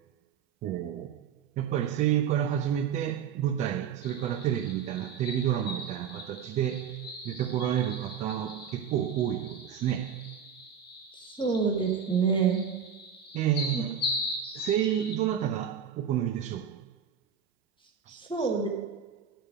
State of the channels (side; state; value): left; quieter; 7.6 dB